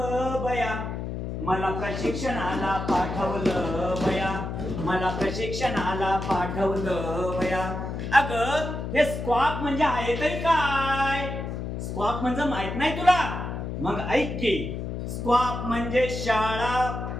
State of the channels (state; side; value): noise; left; hum, 5 dB below the sound